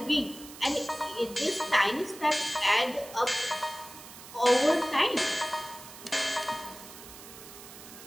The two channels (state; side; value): noise; right; hiss, 16 dB below the sound